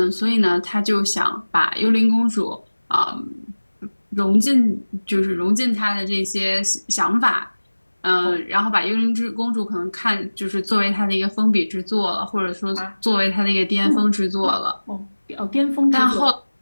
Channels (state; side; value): inverted; both; correlation -1.00